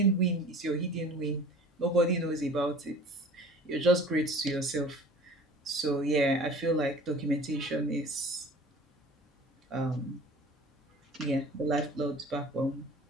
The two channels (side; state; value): both; normal; correlation 0.45